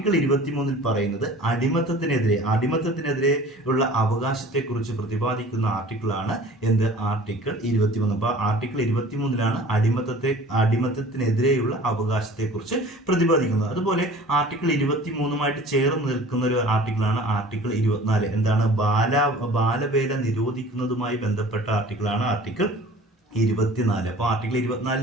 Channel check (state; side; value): normal; both; correlation 0.45